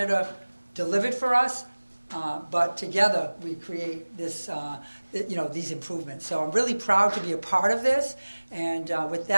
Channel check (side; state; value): both; inverted; correlation -1.00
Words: delivered for us. But together we create this, these improvements. So I'm really proud to be a part of this. And with